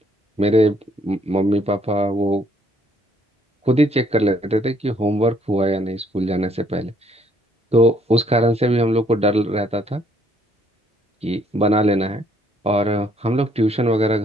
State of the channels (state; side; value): normal; both; correlation 0.66